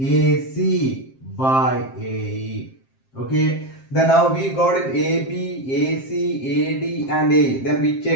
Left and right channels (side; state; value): right; late; 7.6 ms